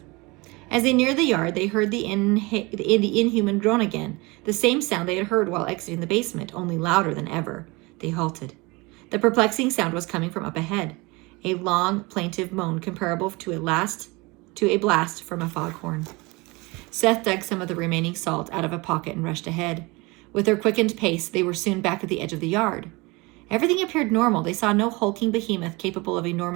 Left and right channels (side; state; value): left; quieter; 25.0 dB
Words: As they neared the yard, they heard the inhuman groan again, the same sound they had heard while exiting the basement, only louder than ever. They halted. The perplexing sound was coming from up ahead, a long, plaintive moan comparable to a blast from a foghorn. Seth dug some of the remaining salt out of a pocket and rushed ahead. With their quickened pace, they were soon back at the edge of the yard. Everything appeared normal. They saw no hulking behemoth capable of